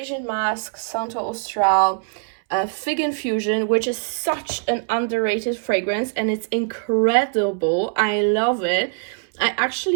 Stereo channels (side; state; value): left; silent; 64 dB below the other